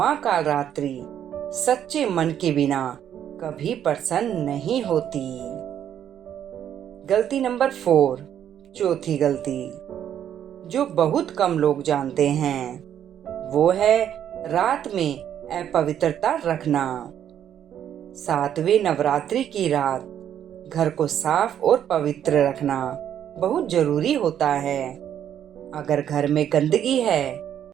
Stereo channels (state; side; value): quieter; left; 9.9 dB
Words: कालरात्रि सच्चे मन के बिना कभी प्रसन्न नहीं होती। गलती नंबर 4। चौथी गलती जो बहुत कम लोग जानते हैं वो है रात में अपवित्रता रखना। 7वें नवरात्रि की रात घर को साफ और पवित्र रखना बहुत जरूरी होता है। अगर घर में गंदगी है